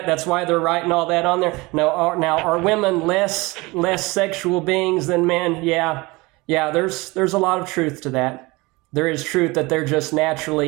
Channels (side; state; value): left; quieter; 23.3 dB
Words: That's why they're writing all that on there. Now, are women less sexual beings than men? Yeah. There's a lot of truth to that. There is truth that they're just